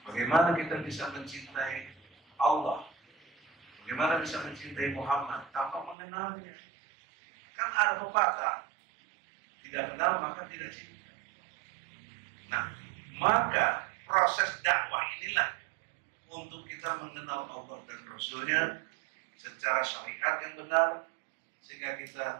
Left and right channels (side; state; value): left; drops out; at 6.0 s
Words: bagaimana kita bisa mencintai Allah? Bagaimana bisa mencintai Muhammad tanpa mengenalnya? Kan ada pepatah, tidak kenal maka tidak cinta. Nah, maka proses dakwah inilah untuk kita mengenal Allah dan Rasulnya secara syariat yang benar, sehingga